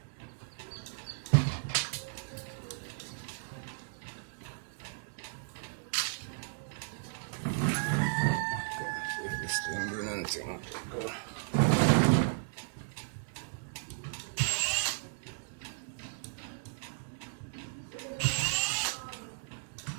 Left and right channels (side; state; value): left; silent; digital silence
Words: If this thing doing anything, go.